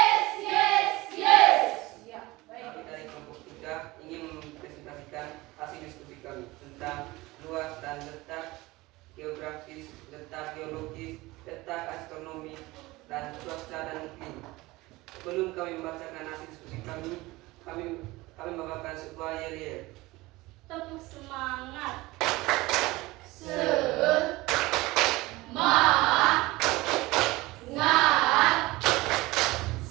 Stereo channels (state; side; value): quieter; left; 20.5 dB